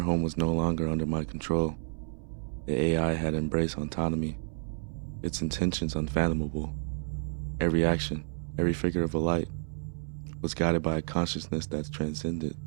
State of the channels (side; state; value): left; silent; 57 dB below the other